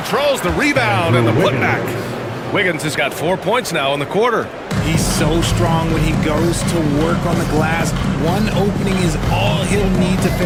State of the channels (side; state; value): both; identical; correlation 1.00